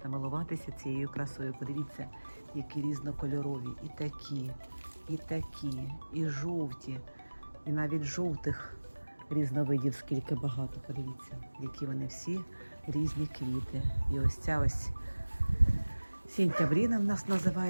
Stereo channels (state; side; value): inverted; both; correlation -1.00